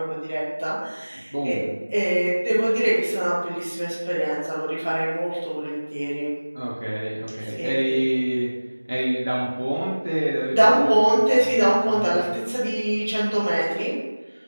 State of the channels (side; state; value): both; inverted; correlation -1.00